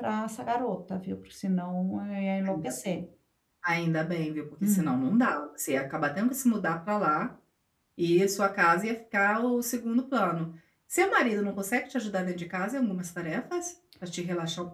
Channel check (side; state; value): both; identical; correlation 1.00